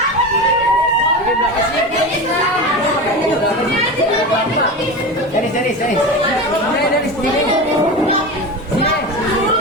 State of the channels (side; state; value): both; normal; correlation 0.25